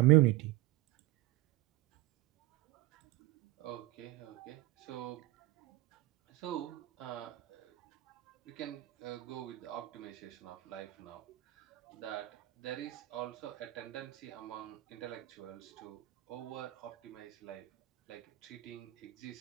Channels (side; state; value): left; quieter; 16.5 dB